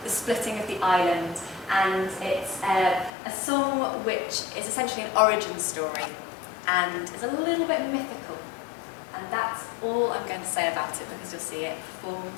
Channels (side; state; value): right; drops out; at 3.1 s